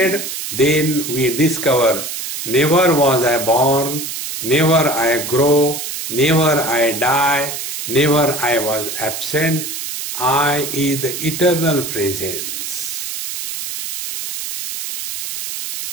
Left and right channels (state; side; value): noise; right; hiss, 6 dB below the sound